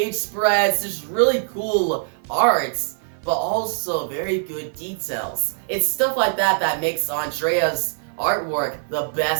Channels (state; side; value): silent; left; 56 dB below the other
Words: spreads, just really cool arts. but also very good details. It's stuff like that that makes Andrea's artwork the